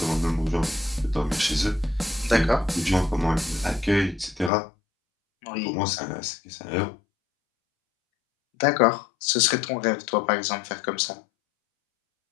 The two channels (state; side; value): drops out; right; at 4.5 s